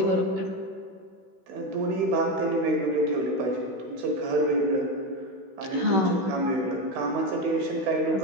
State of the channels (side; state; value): left; late; 16 ms